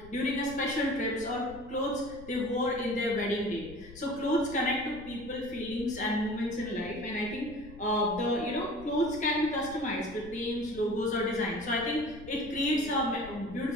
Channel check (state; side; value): noise; left; rumble, 18 dB below the sound